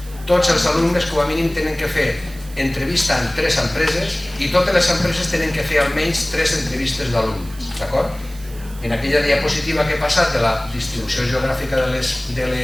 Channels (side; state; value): right; noise; hiss, 20 dB below the sound